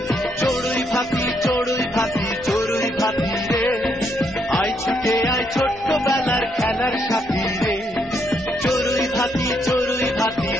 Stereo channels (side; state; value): both; normal; correlation 0.75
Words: চড়ুই ভাতি চড়ুই ভাতি চড়ুই ভাতি রে, আয় ছুটে আয় ছোট্টবেলার খেলার সাথী রে, চড়ুই ভাতি চড়ুই ভাতি